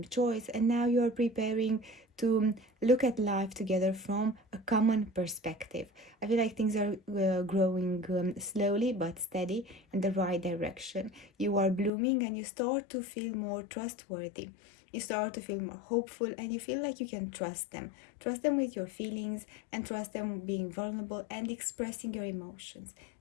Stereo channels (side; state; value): right; drops out; at 11.9 s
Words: choice, and now you are preparing to look at life together from a common perspective. I feel like things are growing slowly but steady in the right direction. You are blooming and you start to feel more trustworthy. You start to feel more hopeful and you feel like you can trust them. Trust them with your feelings and trust them being vulnerable and expressing your emotions.